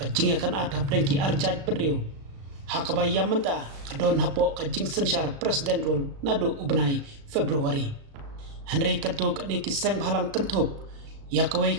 akan adhap dengki arjaj penriu hakabayam menta kadon hapo kajing sensyar presiden rul nadu ubenai Februari Henry katu kani ki seng halang kentup ia kawai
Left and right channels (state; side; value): late; left; 36 ms